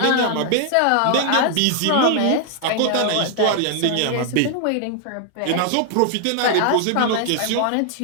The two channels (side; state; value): both; different; correlation 0.00